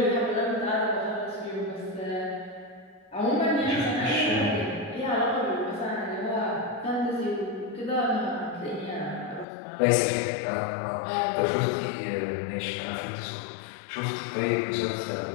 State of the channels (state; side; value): drops out; right; at 9.5 s